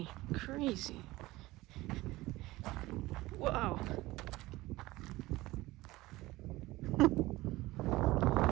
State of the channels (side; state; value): left; quieter; 18.9 dB